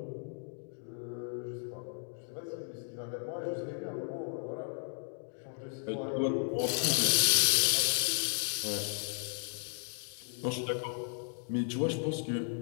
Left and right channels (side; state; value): right; silent; 55 dB below the other